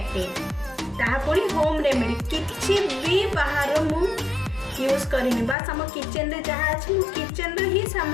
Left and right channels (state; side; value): drops out; right; at 5.6 s